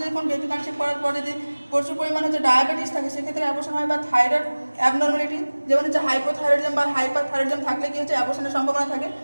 যখন বেবি কনসেপ্ট করার পরে যদি প্রচুর পরিমাণ হচ্ছে ডায়াবেটিস থাকে সেক্ষেত্রে অ্যাবর্শন হয়। বা থাইরয়েড অ্যাবনর্মালিটি যেমন হচ্ছে হাইপোথাইরয়েডিজম বা হাইপারথাইরয়েডিজম থাকলে কি হচ্ছে অ্যাবর্শনের সম্ভাবনা থাকে।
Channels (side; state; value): both; inverted; correlation -1.00